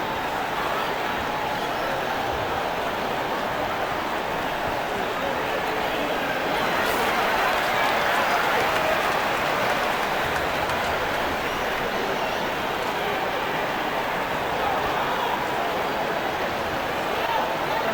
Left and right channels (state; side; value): identical; both; correlation 1.00